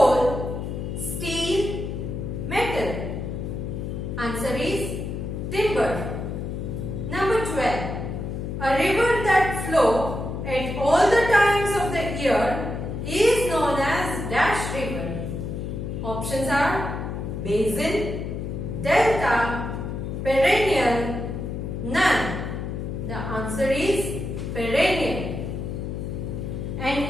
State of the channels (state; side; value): noise; left; hum, 5 dB below the sound